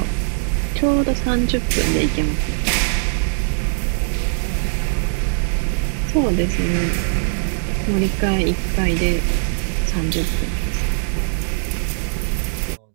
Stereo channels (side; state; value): left; silent; digital silence